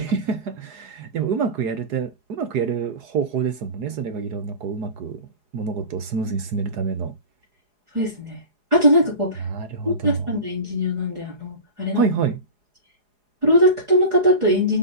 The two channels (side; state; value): left; late; 4.8 ms